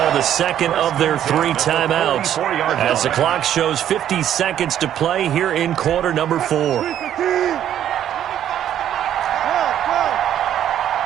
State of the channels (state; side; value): quieter; left; 10.7 dB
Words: the second of their 3 timeouts as the clock shows 50 seconds to play here in quarter number 4.